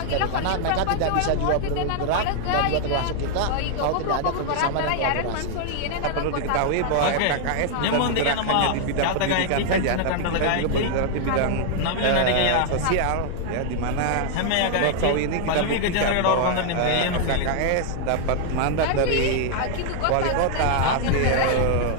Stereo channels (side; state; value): both; different; correlation 0.00